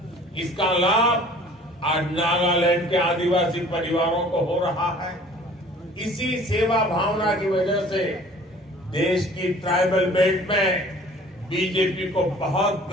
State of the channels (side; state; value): both; normal; correlation 0.50